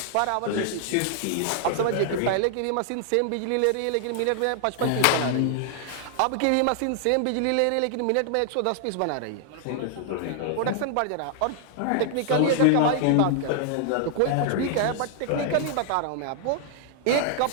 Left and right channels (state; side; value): different; both; correlation 0.00